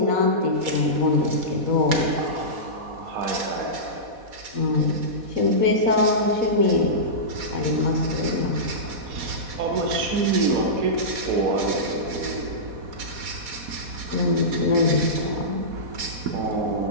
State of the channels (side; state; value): left; late; 4.2 ms